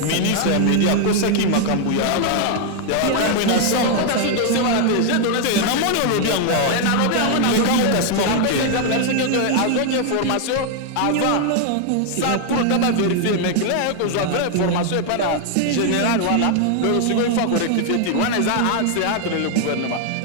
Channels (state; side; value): different; both; correlation 0.00